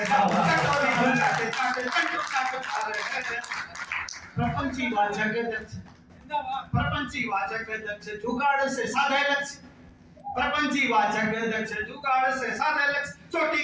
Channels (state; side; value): identical; both; correlation 1.00